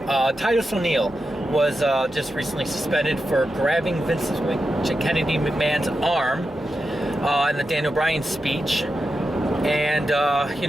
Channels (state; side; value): noise; right; hum, 26 dB below the sound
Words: Titus O'Neil was just recently suspended for grabbing Vince Kennedy McMahon's arm in the Daniel Bryan speech. And, you